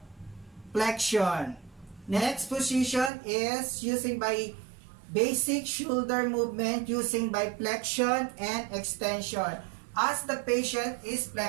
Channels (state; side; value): drops out; left; at 3.1 s